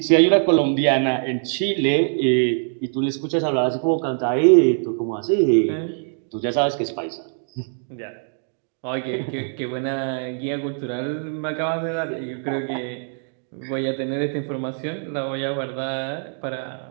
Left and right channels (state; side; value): silent; left; 61 dB below the other